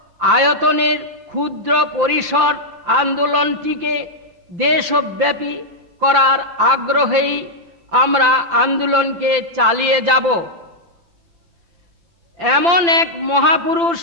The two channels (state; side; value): late; left; 5.9 ms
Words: আয়তনের ক্ষুদ্র পরিসর আন্দোলনটিকে দেশব্যাপী করার আগ্রহেই আমরা আন্দোলনকে চালিয়ে যাব। এমন এক মহাপুরুষ